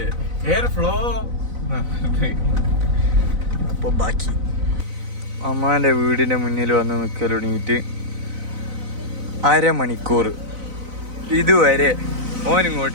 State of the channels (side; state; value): left; late; 4.0 ms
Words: എയർ ഫ്ലോ. അപ്പൊ ബാക്കി അമ്മാന്റെ വീടിന്റെ മുന്നിൽ വന്ന് നിൽക്കൽ തുടങ്ങിയിട്ട് അരമണിക്കൂർ ഇതുവരെ